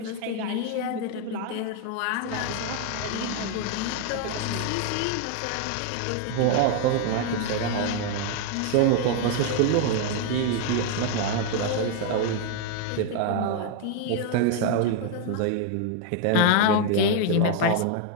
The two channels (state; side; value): different; both; correlation 0.00